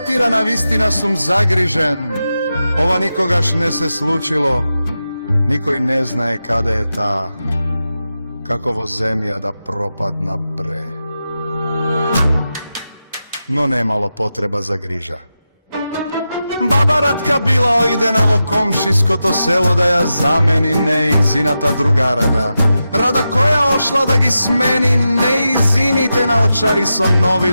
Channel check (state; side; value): inverted; both; correlation -0.90